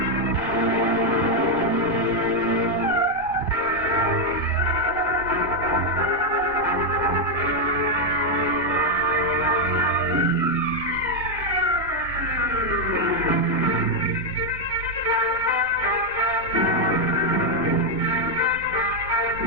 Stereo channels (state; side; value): noise; left; rumble, 20 dB below the sound